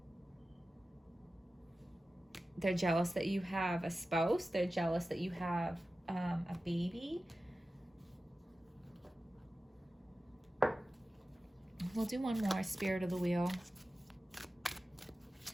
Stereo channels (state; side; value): normal; both; correlation 0.95